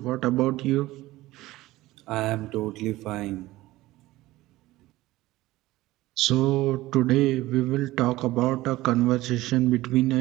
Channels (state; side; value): quieter; left; 17.7 dB